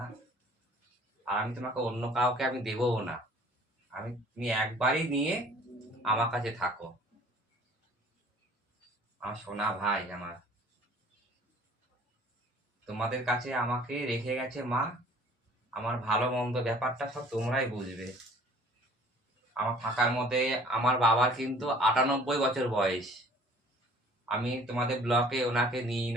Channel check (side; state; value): both; normal; correlation 0.52